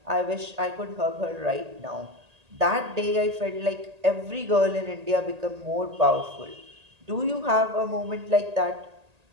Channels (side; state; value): left; late; 1.8 ms